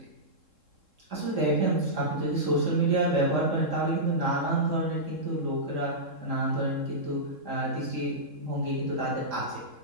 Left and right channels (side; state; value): left; late; 3.7 ms